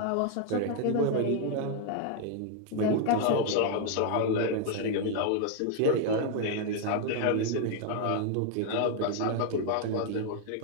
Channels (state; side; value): different; both; correlation 0.00